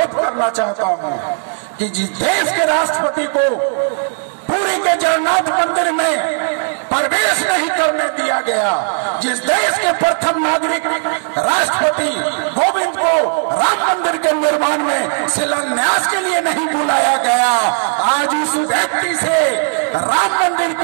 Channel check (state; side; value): silent; left; 62 dB below the other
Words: करना चाहता हूं कि जिस देश के राष्ट्रपति को पुरी के जगन्नाथ मंदिर में प्रवेश नहीं करने दिया गया, जिस देश के प्रथम नागरिक राष्ट्रपति कोविंद को राम मंदिर के निर्माण में शिलान्यास के लिए नहीं बुलाया गया, आज उस व्यक्ति से राम मंदिर